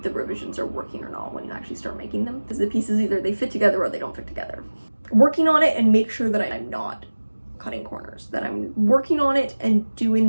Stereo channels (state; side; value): inverted; both; correlation -1.00